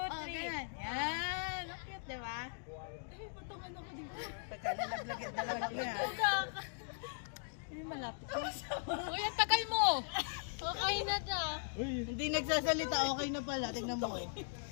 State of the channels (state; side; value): silent; right; digital silence